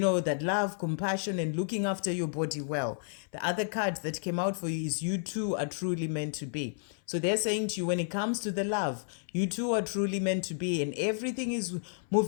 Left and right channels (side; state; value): right; silent; 57 dB below the other